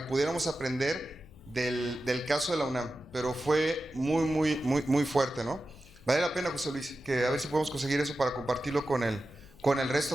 pudiéramos aprender del caso de la UNAM, pero fue muy fuerte, ¿no? Vale la pena, José Luis, que a ver si podemos conseguir eso para compartirlo con el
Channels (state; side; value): noise; left; hum, 24 dB below the sound